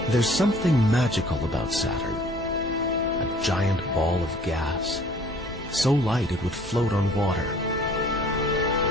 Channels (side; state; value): both; normal; correlation 0.53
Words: There's something magical about Saturn, a giant ball of gas, so light it would float on water.